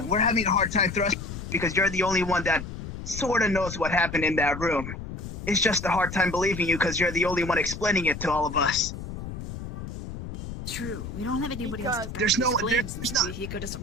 we're having a hard time thrusting because you're the only one that sort of knows what happened in that room. It's just a hard time believing you because you're the only one explaining it to all of us. True. We don't have anybody else to back There's these no- claims there's since no- Fuyuhiko doesn't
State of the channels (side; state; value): left; noise; rumble, 8 dB below the sound